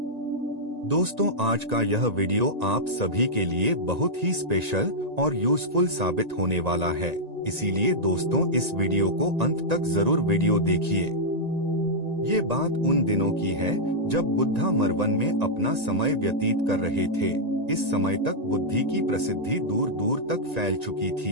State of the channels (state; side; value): late; left; 1.9 ms